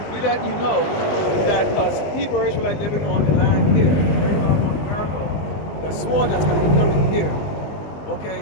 We let you know that us Hebrew Israelites living on the land here, right now on America, the sword that's going to be coming here,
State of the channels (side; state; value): right; late; 20 ms